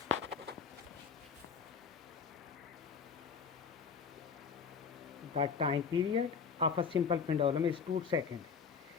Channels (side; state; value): right; quieter; 6.0 dB